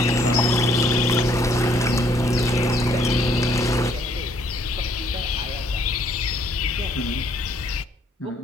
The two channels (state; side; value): normal; both; correlation 0.65